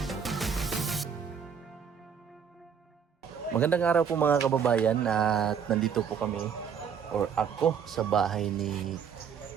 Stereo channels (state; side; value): quieter; left; 7.3 dB